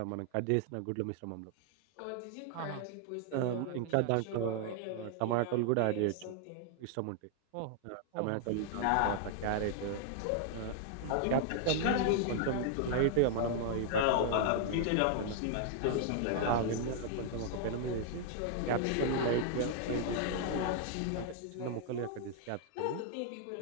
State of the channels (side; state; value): both; different; correlation 0.00